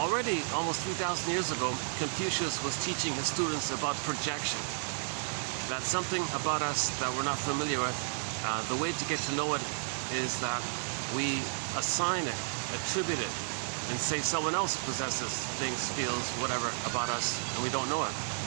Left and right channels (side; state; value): left; silent; 56 dB below the other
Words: almost 3,000 years ago, Confucius was teaching his students about projection. That's something about us that we're not familiar with. The way to get to know it is that we assign it, attribute it, and say someone else possesses things, feels, whatever about us, and we don't know it.